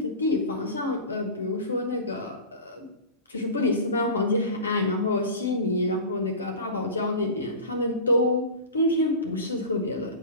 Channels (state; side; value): inverted; both; correlation -0.31